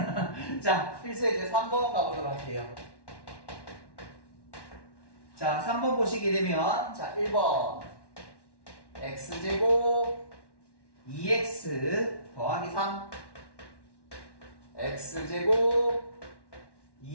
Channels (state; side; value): late; right; 1.1 ms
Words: 자, 필수 이제 3번 가보도록 할게요. 자, 3번 보시게 되면 자, 1번 x제곱 2x 더하기 3 x제곱